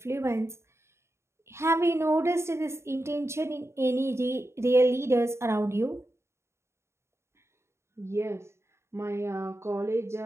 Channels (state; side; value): late; left; 0.13 ms